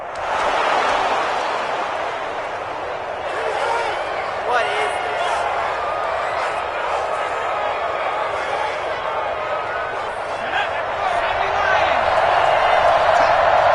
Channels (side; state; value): both; identical; correlation 1.00